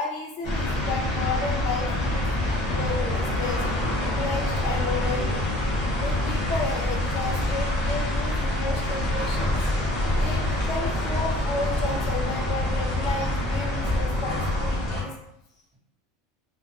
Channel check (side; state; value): both; normal; correlation 0.55